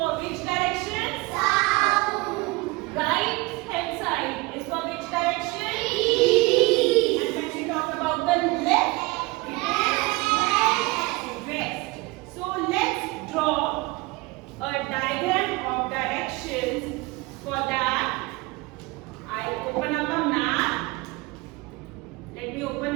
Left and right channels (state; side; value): quieter; left; 23.7 dB